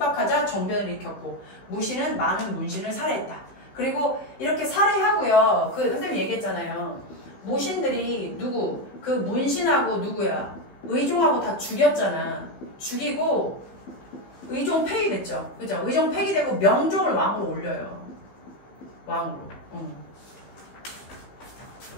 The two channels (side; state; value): right; late; 15 ms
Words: 정변을 일으켰고 무신은 많은 문신을 살해했다. 그리고 이렇게 살해하고요. 그 선생님이 얘기했잖아요. 무신들이 누구 그 문신하고 누구야 의종하고 다 죽였잖아. 죽이고 의종 폐위됐죠. 그죠? 의종 폐기되고 명종을 왕으로 올려요. 왕으로.